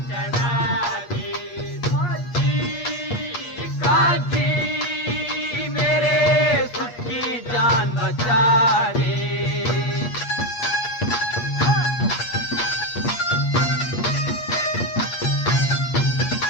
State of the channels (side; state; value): right; late; 8.5 ms